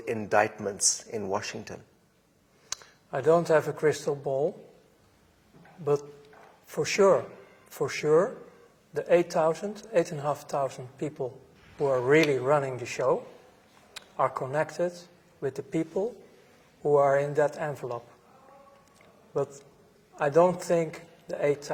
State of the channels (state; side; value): identical; both; correlation 1.00